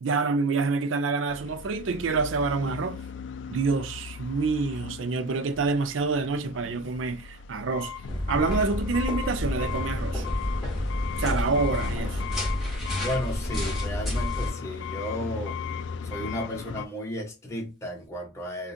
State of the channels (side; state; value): both; normal; correlation 0.37